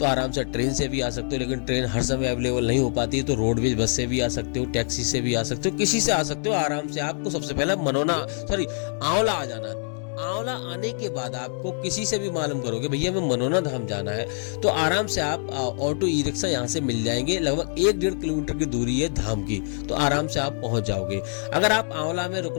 आराम से ट्रेन से भी आ सकते हो, लेकिन ट्रेन हर समय अवेलेबल नहीं हो पाती है, तो रोडवेज बस से भी आ सकते हो, टैक्सी से भी आ सकते हो, किसी से आ सकते हो। आराम से आपको सबसे पहले आंवला आ जाना है। आंवला आने के बाद आपको किसी से भी मालूम करोगे भैया हमें मनोना धाम जाना है, तो आराम से आप ऑटो ई रिक्शा यहाँ से मिल जाएंगे। लगभग 1-1.5 किलोमीटर की दूरी है धाम की, तो आराम से आप पहुंच जाओगे। अगर आप आंवला में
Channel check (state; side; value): silent; right; 62 dB below the other